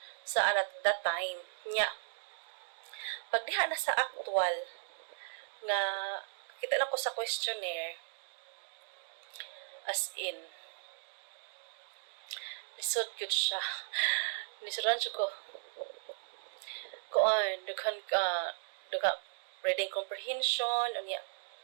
sa at that time. Nya, pag diha na sa actual, nga kita na ko sa questionnaire, as in, lisod yun siya. Lisudan siya ko. Dughan reading comprehension,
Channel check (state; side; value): silent; left; digital silence